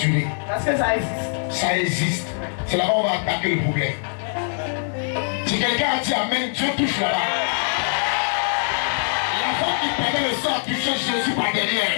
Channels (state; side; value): silent; right; digital silence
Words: ris? Parce que ça existe. Ça existe. C'est là-bas où on va attaquer le problème. Si quelqu'un a dit amen, Dieu touche là-bas. L'enfant qui permet le sang toucher Jésus par